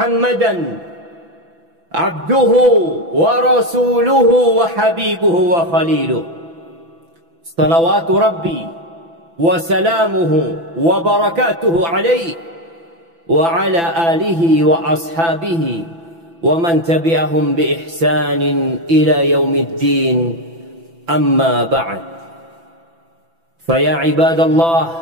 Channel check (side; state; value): left; late; 6.0 ms